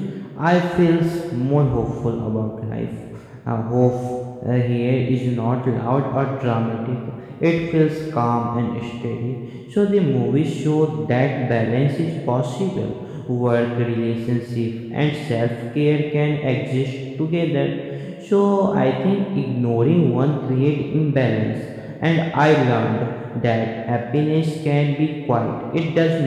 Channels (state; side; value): identical; both; correlation 1.00